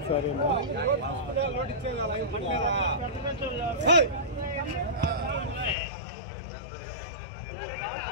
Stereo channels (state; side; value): drops out; right; at 5.8 s